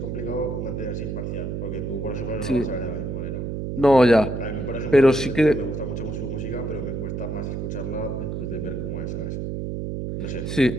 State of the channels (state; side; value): noise; right; hum, 4 dB below the sound